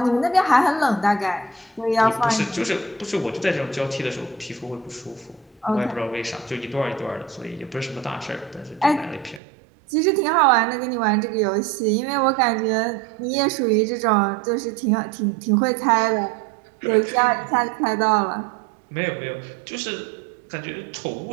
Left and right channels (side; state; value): left; drops out; at 9.4 s